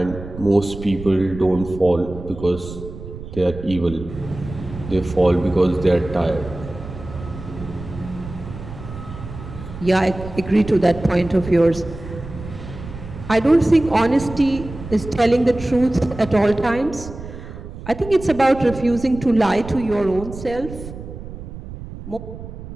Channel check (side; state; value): right; noise; rumble, 12 dB below the sound